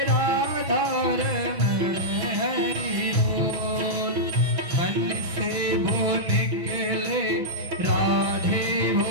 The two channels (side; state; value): left; late; 6.1 ms